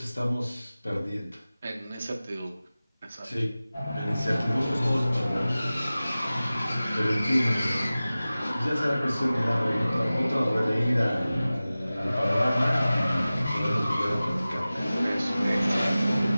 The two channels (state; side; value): inverted; both; correlation -0.97